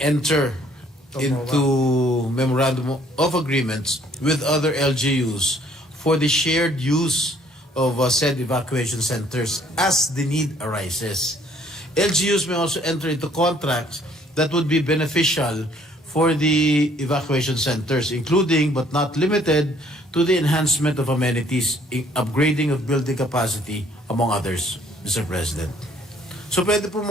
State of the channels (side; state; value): both; normal; correlation 0.61